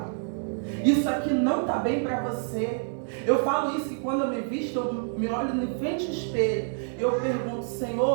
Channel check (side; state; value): left; silent; 59 dB below the other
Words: Isso aqui não está bem para você. Eu falo isso que quando eu me visto, eu me olho em frente ao espelho. Eu pergunto,